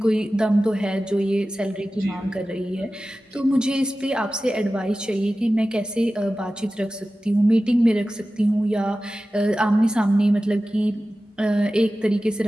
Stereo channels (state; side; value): normal; both; correlation 0.95